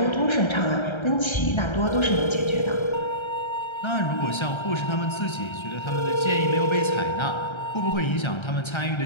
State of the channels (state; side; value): late; right; 1.3 ms